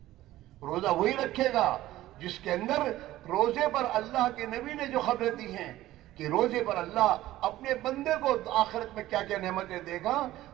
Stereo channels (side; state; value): left; quieter; 15.4 dB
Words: روزہ وہی رکھے گا جس کے اندر روزے پر اللہ کے نبی نے جو خبریں دی ہیں کہ روزے پر اللہ اپنے بندے کو آخرت میں کیا کیا نعمتیں دے گا،